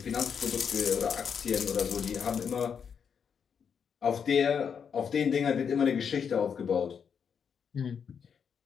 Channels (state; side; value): quieter; right; 7.0 dB